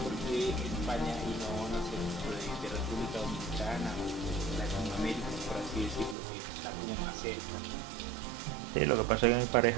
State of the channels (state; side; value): drops out; left; at 6.2 s